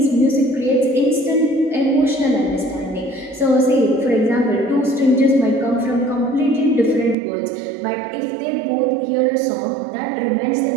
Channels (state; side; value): drops out; left; at 7.2 s